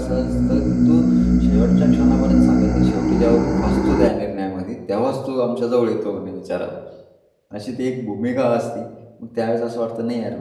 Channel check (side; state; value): both; identical; correlation 1.00